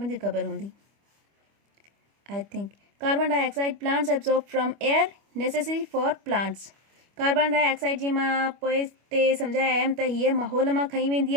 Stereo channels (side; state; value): left; late; 25 ms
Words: खे ख़बर हूंदी I think. Carbon dioxide plants absorb from air necessary for plants. Carbon dioxide जी मां पोइ ते सम्झाए आयमि त हीअ माहौल मां खई वेंदी